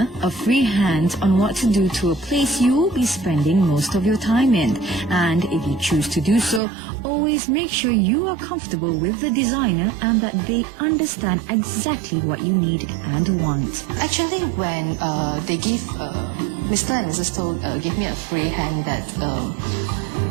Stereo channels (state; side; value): drops out; left; at 6.6 s